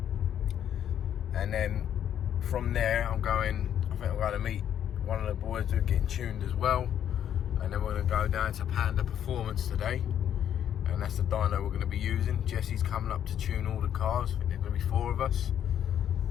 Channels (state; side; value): quieter; right; 9.8 dB